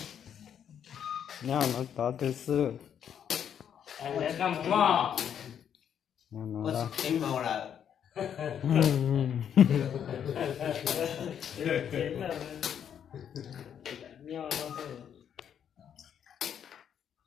Nhau nó to từ xưa. anh đã cầm mò Nó Có đó. tính màu là nhau nó thôi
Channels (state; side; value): quieter; right; 8.8 dB